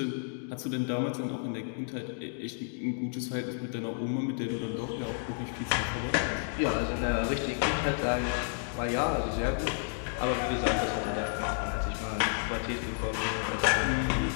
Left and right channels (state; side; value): silent; right; digital silence